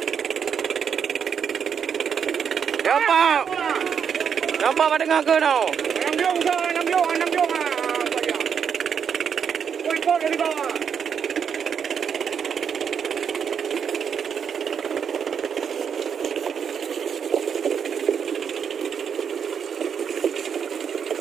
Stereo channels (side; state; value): left; quieter; 7.3 dB